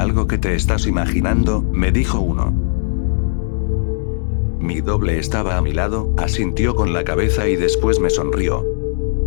que te estás imaginando», me dijo uno. Mi doble estaba a mi lado, asintió con la cabeza y después me sonrió.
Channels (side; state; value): right; silent; digital silence